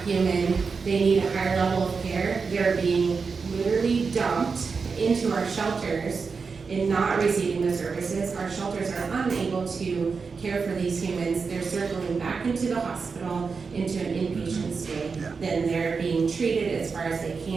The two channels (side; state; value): left; quieter; 5.0 dB